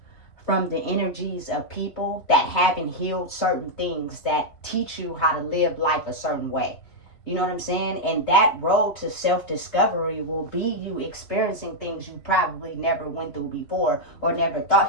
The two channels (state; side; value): late; right; 3.8 ms